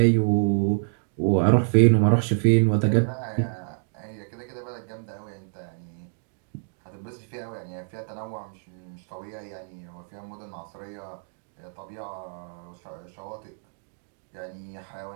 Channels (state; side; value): silent; left; digital silence